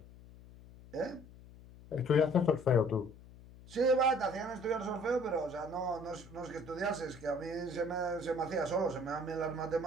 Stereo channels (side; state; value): left; noise; hum, 19 dB below the sound